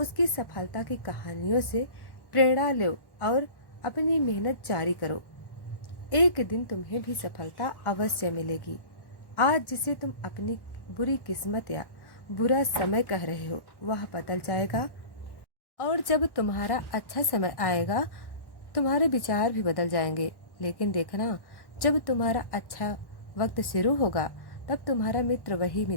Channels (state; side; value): late; right; 1.1 ms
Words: सफलता की कहानियों से प्रेरणा लो और अपनी मेहनत जारी करो। एक दिन तुम्हें भी सफलता अवश्य मिलेगी। आज जिसे तुम अपनी बुरी किस्मत या बुरा समय कह रहे हो, वह बदल जाएगा और जब तुम्हारा अच्छा समय आएगा, तुम्हारे विचार भी बदल जाएंगे। लेकिन देखना, जब तुम्हारा अच्छा वक्त शुरू होगा, तब तुम्हारा मित्र, वही